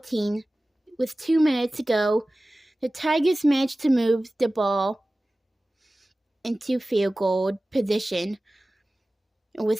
with 2 minutes to go. The Tigers managed to move the ball into field goal position.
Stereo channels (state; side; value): normal; both; correlation 0.97